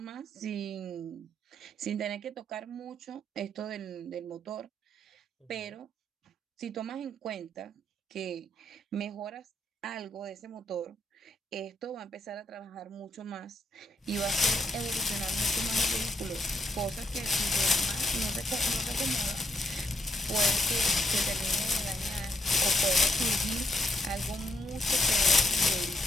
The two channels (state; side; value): normal; both; correlation 0.77